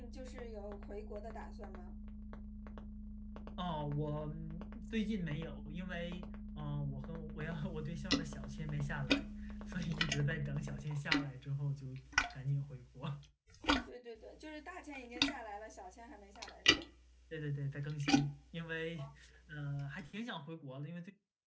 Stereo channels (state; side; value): identical; both; correlation 1.00